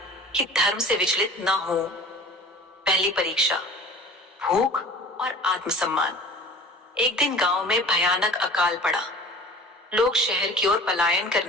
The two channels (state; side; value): normal; both; correlation 0.42